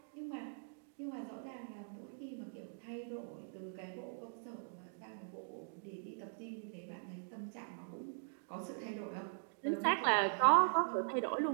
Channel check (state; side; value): silent; left; digital silence